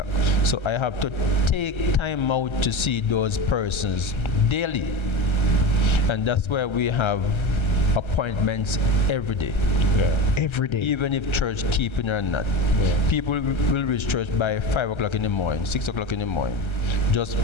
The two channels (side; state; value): right; late; 1.3 ms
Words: So I have to take time out to see those persons daily. And that's why we have appointments every day. Every day. Even if church keeping or not. People will reach church by 5 o'clock in the morning, 6 o'clock in the morning, just